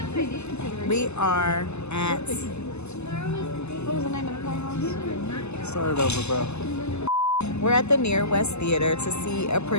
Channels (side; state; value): right; late; 0.80 ms